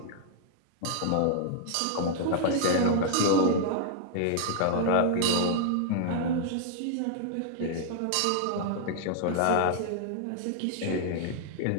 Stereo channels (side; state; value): both; different; correlation -0.01